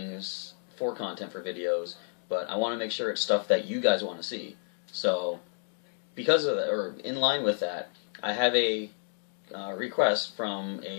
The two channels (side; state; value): right; silent; 57 dB below the other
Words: for content for videos, but I want to make sure it's stuff that you guys want to see. So, because of that, or in line with that, I have a request from